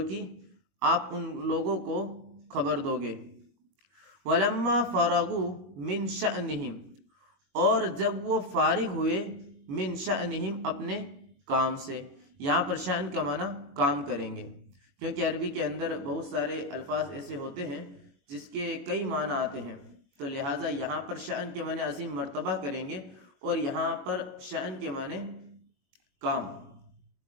کی آپ ان لوگوں کو خبر دو گے. وَلَمَّا فَرَغُوا مِنْ شَأْنِهِمْ، اور جب وہ فارغ ہوئے، من شأنہم اپنے کام سے. یہاں پر شأن کا معنی کام کریں گے، کیونکہ عربی کے اندر بہت سارے الفاظ ایسے ہوتے ہیں جس کے کئی معنی آتے ہیں، تو لہٰذا یہاں پر شأن کے معنی عظیم مرتبہ کریں گے، اور یہاں پر شأن کے معنی کام.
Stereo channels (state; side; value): late; left; 22 ms